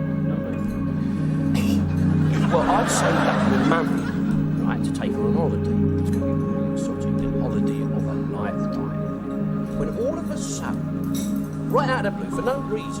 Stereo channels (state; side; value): identical; both; correlation 1.00